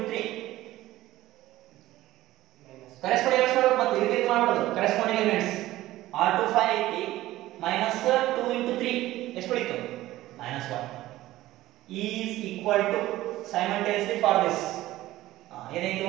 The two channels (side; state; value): left; quieter; 15.9 dB